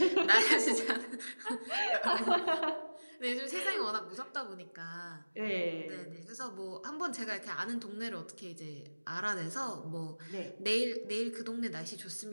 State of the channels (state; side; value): inverted; both; correlation -1.00